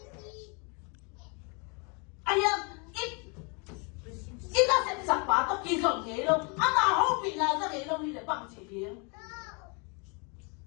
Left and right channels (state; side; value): quieter; right; 33.5 dB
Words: aya it da se sak pa to ki zon nge lo ama ho pi na za nge lo ni le bang chi pi